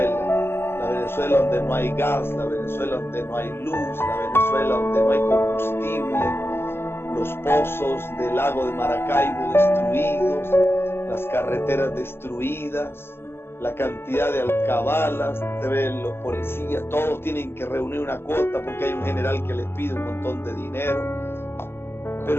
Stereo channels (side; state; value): right; late; 0.11 ms